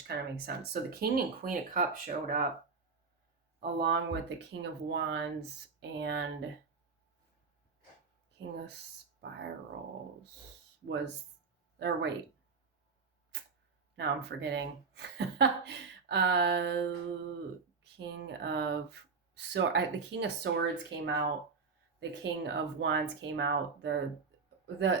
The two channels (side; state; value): left; quieter; 4.9 dB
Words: kind of makes sense. So the King and Queen of Cups showed up along with the King of Wands and King of Spirals was, or wait, now I'm forgetting. King of the King of Swords came out. The King of Wands came out. The